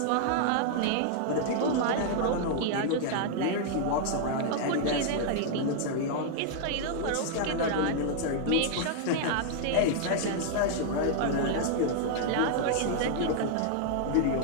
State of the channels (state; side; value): different; both; correlation 0.00